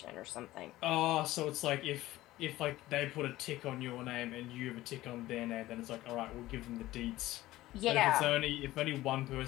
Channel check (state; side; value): quieter; right; 16.5 dB